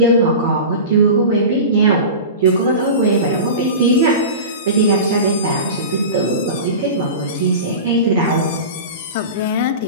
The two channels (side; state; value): both; inverted; correlation -0.31